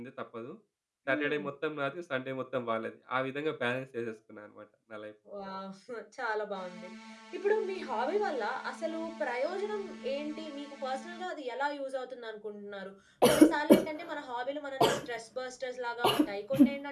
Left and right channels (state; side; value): identical; both; correlation 1.00